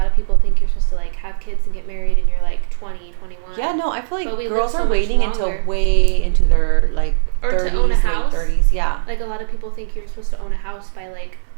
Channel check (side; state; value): left; silent; digital silence